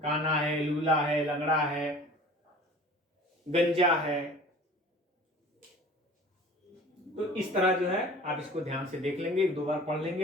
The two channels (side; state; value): both; normal; correlation 0.44